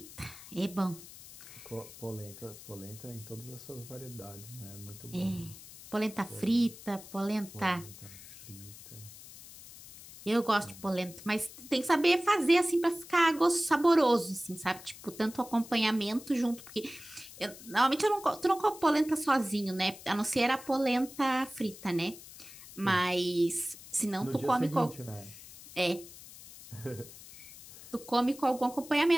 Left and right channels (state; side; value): noise; left; hiss, 17 dB below the sound